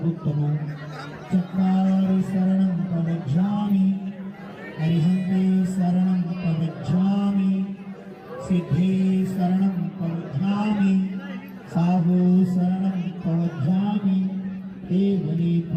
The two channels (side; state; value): both; identical; correlation 1.00